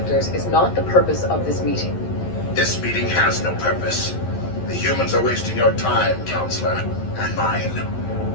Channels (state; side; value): late; right; 11 ms